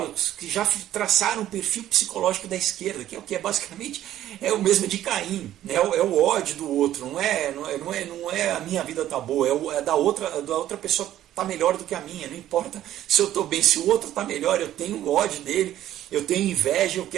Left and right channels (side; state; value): left; quieter; 12.6 dB